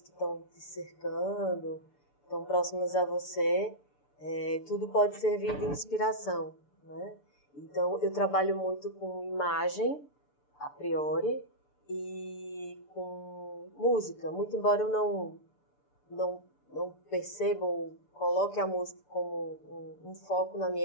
que estão te cercando, estão próximas a você, tudo pode servir de inspiração, né? Então, eu trabalho muito com imagem, a priori, e com música, muito embora eu não perceba ou coloque a música como um foco na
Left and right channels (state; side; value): late; right; 6.8 ms